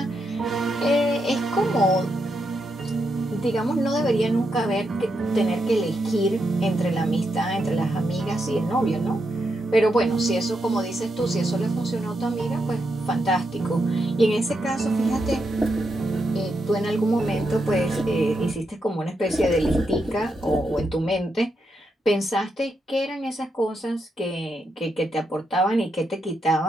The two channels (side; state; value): both; normal; correlation 0.83